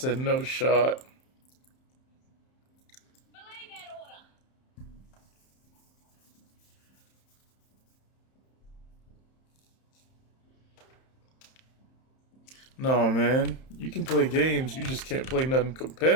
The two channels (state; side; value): late; right; 31 ms